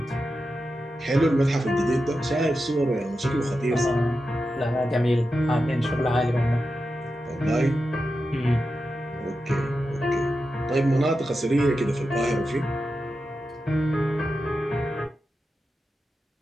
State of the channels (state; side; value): normal; both; correlation 0.90